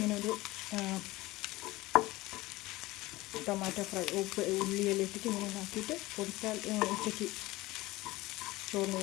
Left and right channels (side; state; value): right; quieter; 19.5 dB